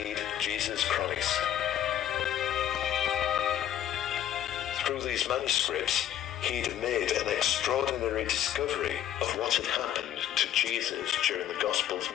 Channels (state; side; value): quieter; right; 11.1 dB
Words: Jesus Christ. Through these manuscripts, he'd made an extraordinary discovery of what had happened to Jesus during the Gospel's